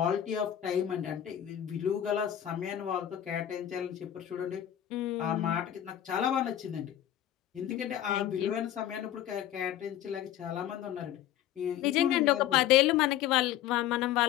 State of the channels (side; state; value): right; quieter; 11.6 dB